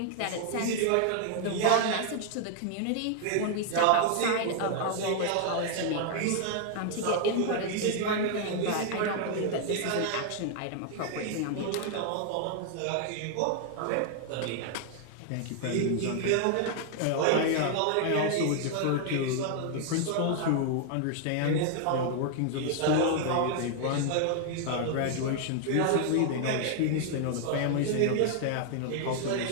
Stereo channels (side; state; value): both; different; correlation 0.00